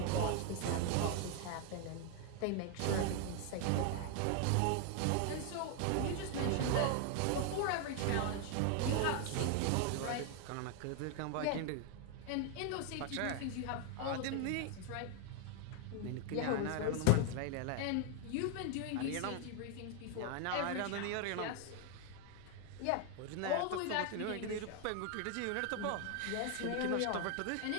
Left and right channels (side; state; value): both; different; correlation 0.01